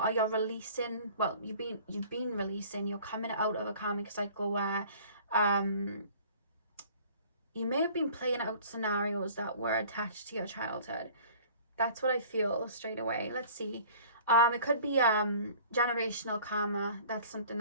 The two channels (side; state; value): both; inverted; correlation -0.48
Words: you're releasing, well, you've been releasing, you're coming out of a karmic cycle where you may have been playing out scenarios that were attached to your childhood. That's what I feel straight away. Let's see. It could be generational karma. That's something